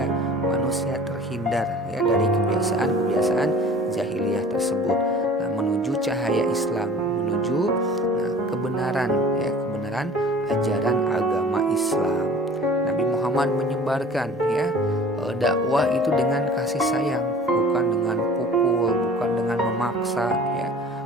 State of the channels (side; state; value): both; normal; correlation 0.45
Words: manusia terhindar ya dari kebiasaan-kebiasaan jahiliyah tersebut. Nah, menuju cahaya Islam, menuju kebenaran ya, kebenaran ajaran agama Islam. Nabi Muhammad menyebarkan ya dakwah itu dengan kasih sayang, bukan dengan pukul, bukan dengan memaksa ya,